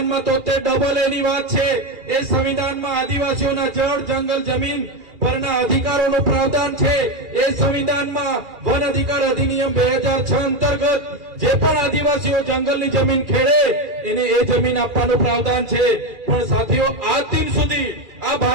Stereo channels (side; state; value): left; late; 2.4 ms